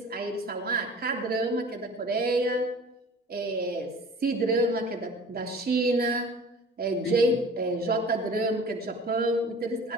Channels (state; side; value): normal; both; correlation 0.44